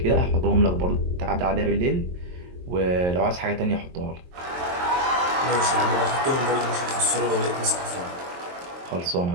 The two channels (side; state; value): left; late; 23 ms